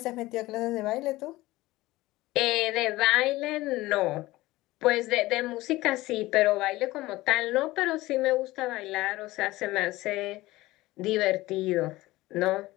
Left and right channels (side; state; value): right; quieter; 18.6 dB